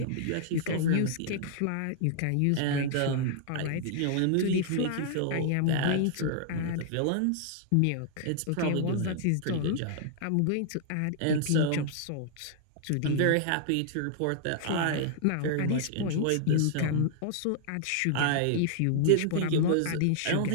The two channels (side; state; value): both; different; correlation -0.01